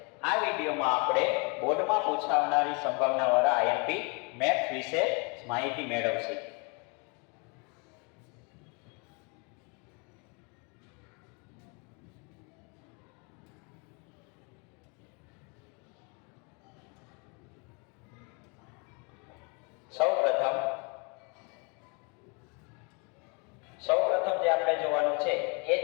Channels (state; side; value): quieter; right; 32.9 dB